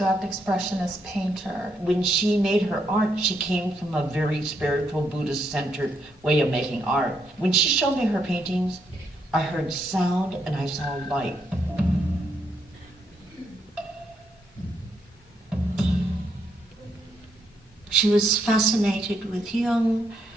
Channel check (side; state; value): both; normal; correlation 0.77